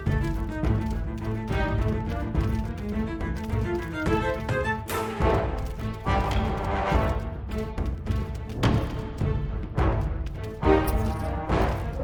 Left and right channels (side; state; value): both; identical; correlation 1.00